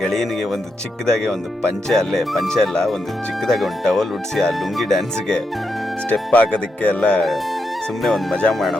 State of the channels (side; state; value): both; normal; correlation 0.84